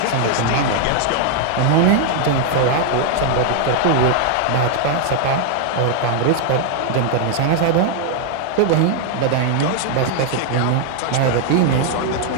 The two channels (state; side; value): different; both; correlation 0.00